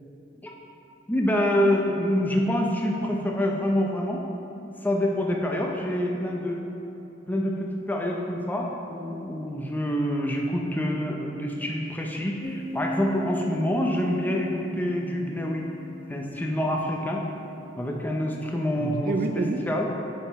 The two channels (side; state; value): both; normal; correlation 0.75